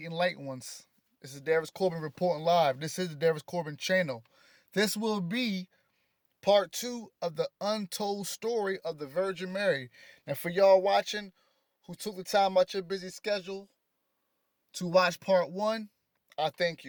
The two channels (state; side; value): identical; both; correlation 1.00